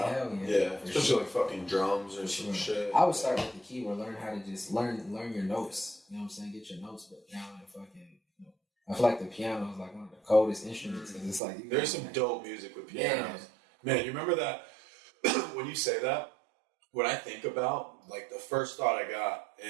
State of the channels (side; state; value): left; drops out; at 11.4 s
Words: Hell yeah. Yeah, especially like fucking drums or some shit. I would start with the keyboard, learn how to just learn your notes. You know what I'm saying? Get your notes, but down and fucking. I feel like the piano is like one of the coldest instruments because it's like there's some dope music with pianos. Man, you remember that when you say that? What I think about, like the first thought I got,